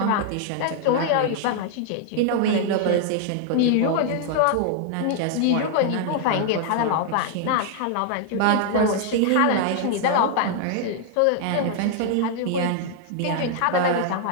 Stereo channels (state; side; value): different; both; correlation 0.00